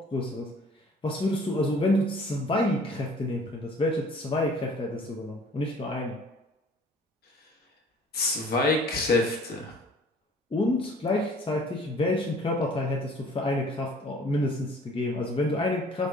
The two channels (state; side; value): normal; both; correlation 0.52